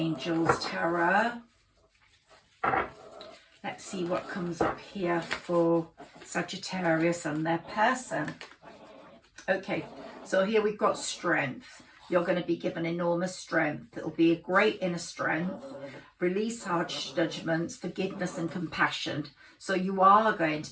tarot. Let's see what comes up here for Sagittarius and their person. Okay, so here we've got strength. You're going to be given enormous strength. It'll be a great inner strength. Release harsh judgments, forgiveness and compassion. So you are going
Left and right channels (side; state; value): both; identical; correlation 1.00